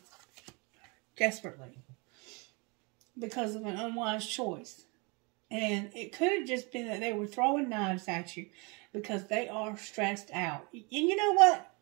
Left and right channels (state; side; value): quieter; left; 29.9 dB